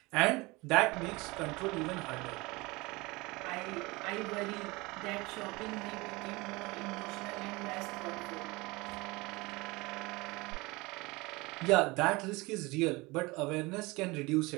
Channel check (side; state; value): left; quieter; 23.5 dB